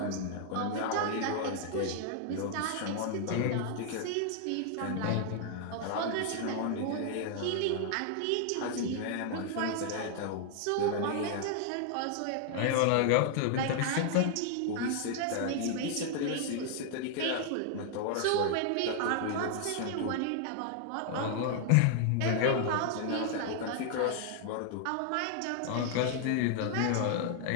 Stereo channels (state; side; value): different; both; correlation 0.00